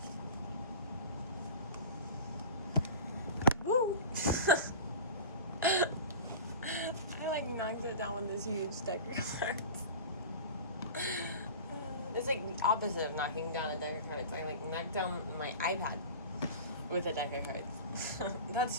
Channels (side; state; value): both; inverted; correlation -0.34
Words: Woo! I knocked it down with this huge deck of cards. It's the opposite of knocking down a deck of cards. I knocked down my iPad with a deck of cards.